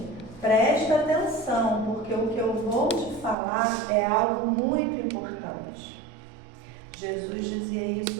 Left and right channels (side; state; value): left; drops out; at 3.4 s